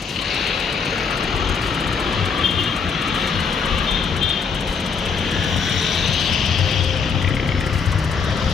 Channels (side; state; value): right; quieter; 5.8 dB